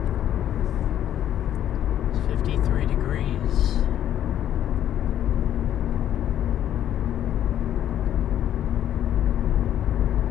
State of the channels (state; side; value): quieter; right; 11.0 dB